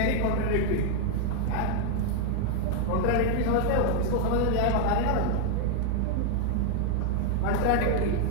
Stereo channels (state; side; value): different; both; correlation 0.00